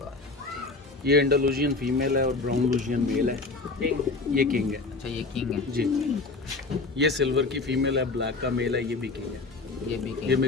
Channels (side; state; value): right; quieter; 3.7 dB